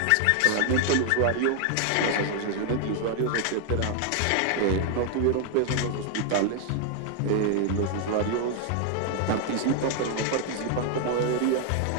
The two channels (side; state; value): both; different; correlation 0.00